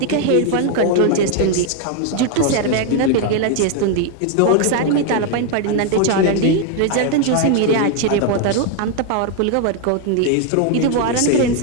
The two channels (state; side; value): different; both; correlation 0.00